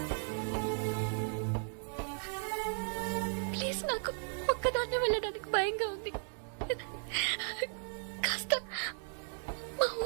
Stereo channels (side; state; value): left; silent; 54 dB below the other